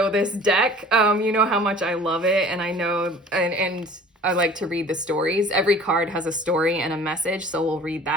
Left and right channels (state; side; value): normal; both; correlation 0.47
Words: this deck, you know how much I love it. And I know, and I like to read the stories. Every card has a story and a message, so we'll read